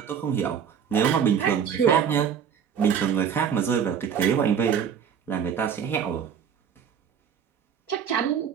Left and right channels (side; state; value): left; quieter; 7.7 dB